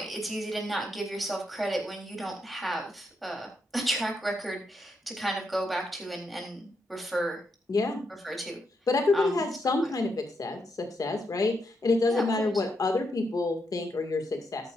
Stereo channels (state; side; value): normal; both; correlation 0.81